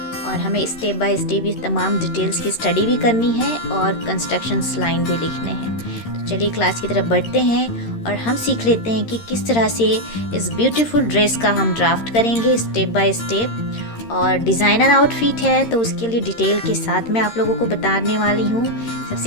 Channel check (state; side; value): late; right; 13 ms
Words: और हमें स्टेप बाय स्टेप ये तमाम डिटेल्स की स्टडी भी करनी है और कंस्ट्रक्शंस लाइन भी लिखने हैं। तो चलिए क्लास की तरफ बढ़ते हैं और हम सीख लेते हैं कि किस तरह से इस ब्यूटीफुल ड्रेस का हम ड्राफ्ट करेंगे स्टेप बाय स्टेप। और डिज़ाइनर आउटफिट है तो उसके लिए डिटेल के साथ मैं आप लोगों को बताने वाली हूँ।